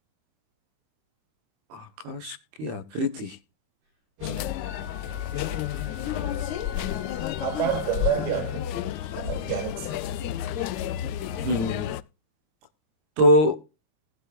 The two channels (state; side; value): late; left; 26 ms